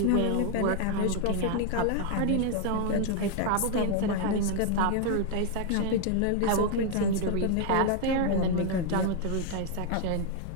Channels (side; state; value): both; different; correlation 0.00